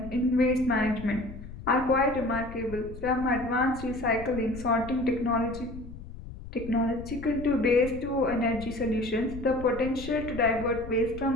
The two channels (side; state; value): left; noise; rumble, 13 dB below the sound